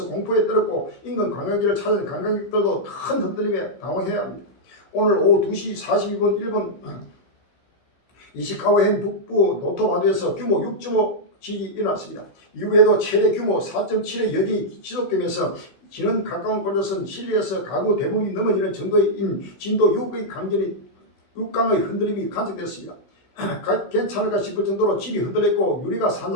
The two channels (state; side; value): late; right; 16 ms